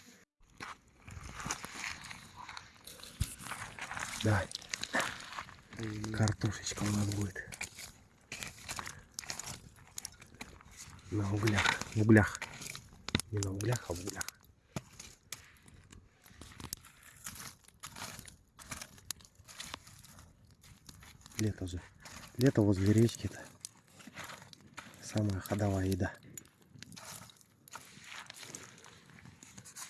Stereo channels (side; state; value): both; identical; correlation 1.00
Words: Давай. Картошечка у нас будет. На углях. В углях. Не на углях, а в углях. лето же. Лето возле речки-то. Самая ходовая еда.